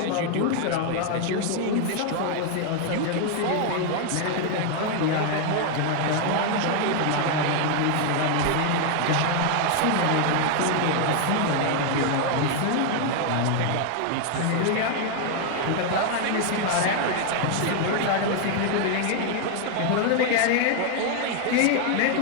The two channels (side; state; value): both; different; correlation 0.00